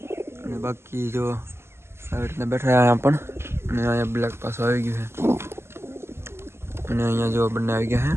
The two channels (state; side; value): late; left; 0.12 ms